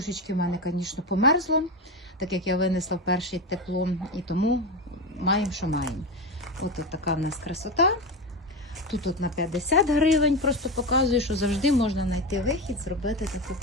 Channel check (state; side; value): normal; both; correlation 0.18